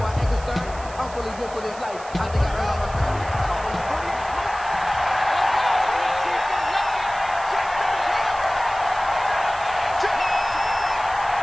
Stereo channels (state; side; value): noise; right; hiss, 18 dB below the sound